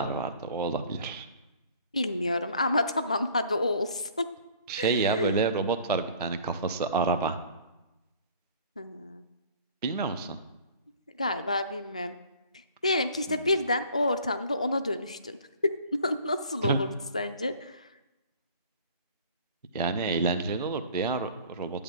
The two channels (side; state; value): both; inverted; correlation -0.49